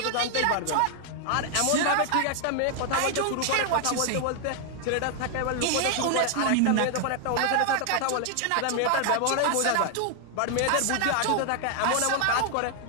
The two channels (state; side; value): different; both; correlation 0.00